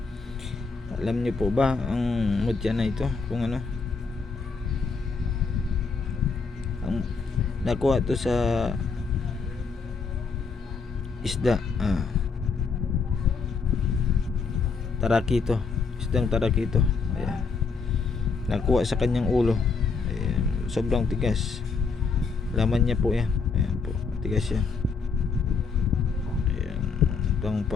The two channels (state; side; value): quieter; right; 4.9 dB